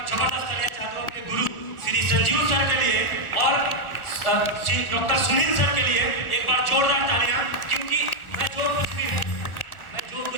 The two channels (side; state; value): right; late; 1.4 ms